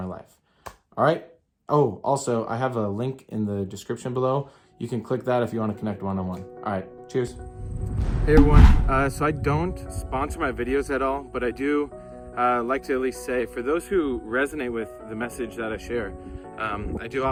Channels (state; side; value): identical; both; correlation 1.00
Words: life. All right? Oh, also, I have a link in the description below. You can click that if you want to connect one-on-one. All right, cheers. Hey everyone, so I don't sponsor my videos at all, but I do like to at least say, for those who resonate with the message that I share, I do